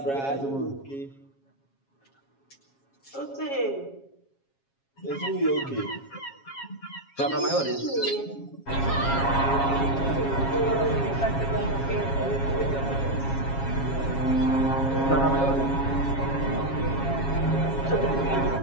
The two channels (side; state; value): right; late; 7.3 ms